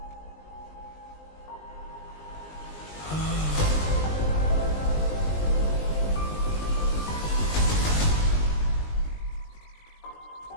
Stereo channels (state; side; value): late; right; 19 ms